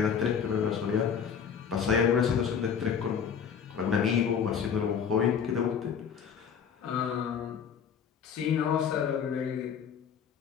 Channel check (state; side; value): quieter; right; 7.2 dB